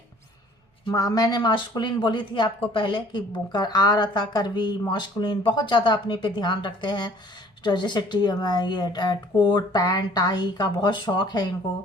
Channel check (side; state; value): both; normal; correlation 0.54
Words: मैंने मास्कुलिन बोली थी आपको पहले कि आ रहा था करवी, मास्कुलिन बहुत ज़्यादा अपने पे ध्यान रखते हैं, तो जैसे ये कोट पैंट टाई का बहुत शौक है